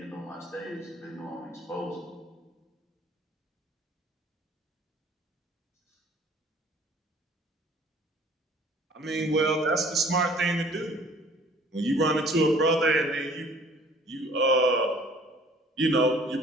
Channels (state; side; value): normal; both; correlation 0.53